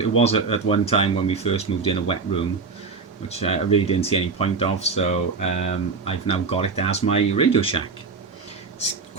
at one time when we first moved in a wet room, which I really didn't see any point of. So I've now got it as my Radio Shack. It's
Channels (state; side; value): quieter; left; 4.6 dB